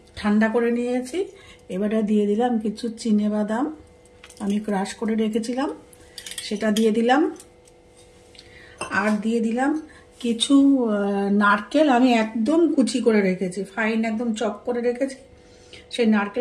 ঠান্ডা করে নিয়েছি। এবারে দিয়ে দিলাম কিছু চিনেবাদাম, আমি ক্রাশ করে রেখেছিলাম, সেটা দিয়ে দিলাম। আর দিয়ে দিলাম কিছু নারকেল, আমি একদম কুচি করে রেখেছি, ফাইন একদম চপ করে রেখেছি, সেই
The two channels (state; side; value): identical; both; correlation 1.00